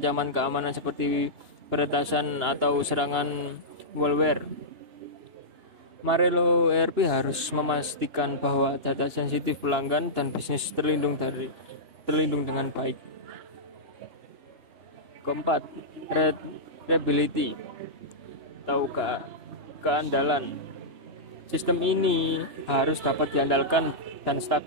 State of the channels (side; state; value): left; late; 2.8 ms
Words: keamanan seperti peretasan atau serangan malware. Marelo ERP harus memastikan bahwa data sensitif pelanggan dan bisnis terlindung dengan baik. Keempat, reliability atau keandalan. Sistem ini harus dapat diandalkan dan